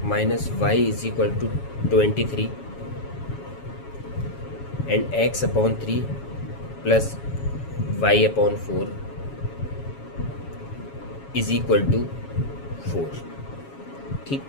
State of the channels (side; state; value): right; late; 7.2 ms